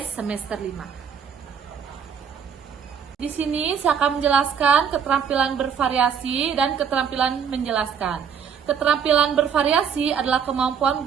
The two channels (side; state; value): left; quieter; 7.3 dB